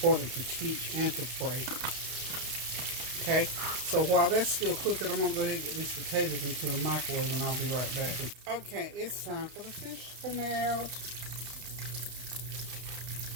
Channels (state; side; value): late; left; 32 ms